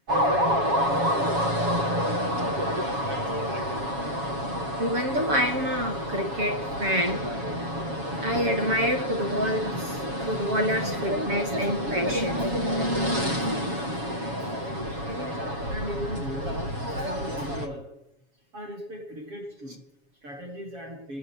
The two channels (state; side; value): late; left; 7.2 ms